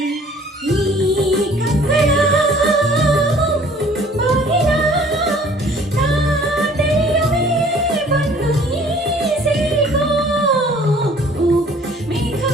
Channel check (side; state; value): both; normal; correlation 0.54